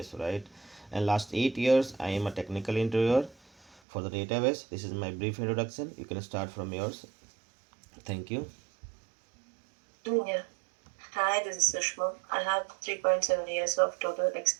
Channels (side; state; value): left; drops out; at 3.8 s